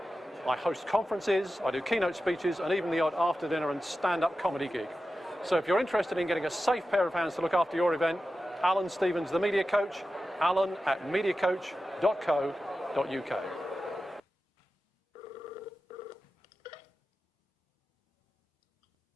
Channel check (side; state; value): both; normal; correlation 0.93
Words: I host conferences, I do keynote speeches, and even the odd after-dinner and stand-up comedy gig. So if you're interested in getting a safe pair of hands to look after your event, Alan Stevens, the Media Coach, alan@mediacoach.co.uk.